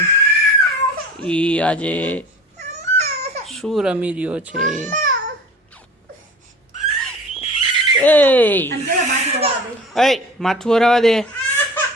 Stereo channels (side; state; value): both; normal; correlation 0.40